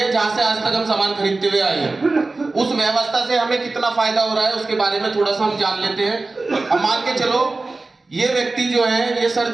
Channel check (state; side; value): quieter; left; 3.4 dB